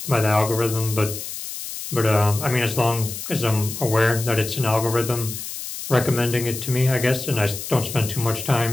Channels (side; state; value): left; noise; hiss, 8 dB below the sound